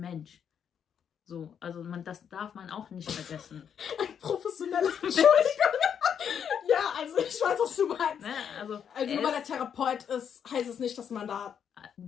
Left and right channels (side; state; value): right; quieter; 8.0 dB